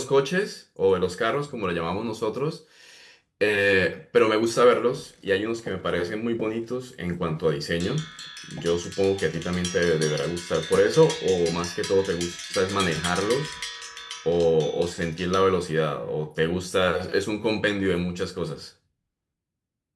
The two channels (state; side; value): identical; both; correlation 1.00